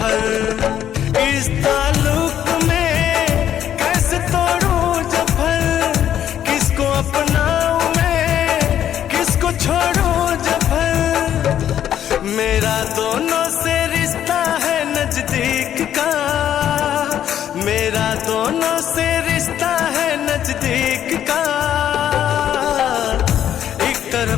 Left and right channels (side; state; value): right; quieter; 10.5 dB